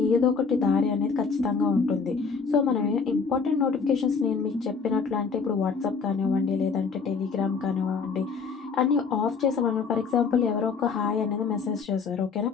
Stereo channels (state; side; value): quieter; right; 5.3 dB